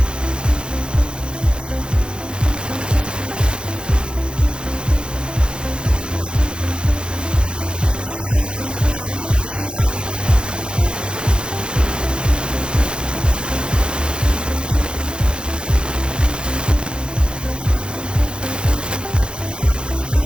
sa college life mo? Yung mamimiss ko talaga ng sobra guys, yung yung mga friends ko also, the memories. Ayan. Yung mga memories na ginawa namin during first year tsaka to fourth year, talagang na-feel ko yung moment na nandun sila. Tulong-tulungan kami. Nagtutulungan kami sa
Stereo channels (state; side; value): late; left; 0.052 ms